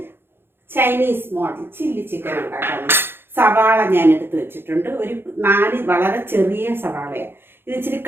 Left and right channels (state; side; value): late; left; 0.11 ms